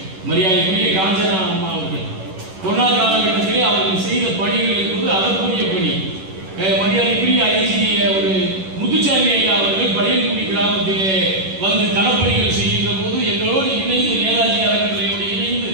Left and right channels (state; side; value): late; left; 11 ms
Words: மரியாதைக்குரிய காஞ்சனா அம்மா அவர்கள் கொரோனா காலகட்டத்திலே அவர்கள் செய்த பணிகள் என்பது அதற்குரிய பணி. மரியாதைக்குரிய ஐஜி ஒரு முத்துச்சாமி ஐயா அவர்கள் பழையங்குடி கிராமத்திலே வந்து களப்பணிகள் செய்கின்ற போது எங்களோடு இணைந்து நேதாஜி அறக்கட்டளையோடு இணைந்து